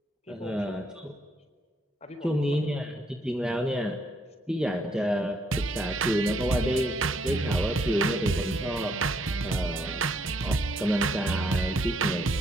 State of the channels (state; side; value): normal; both; correlation 0.71